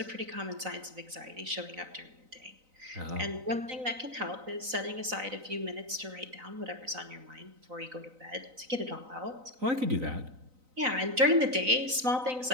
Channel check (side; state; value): left; late; 3.9 ms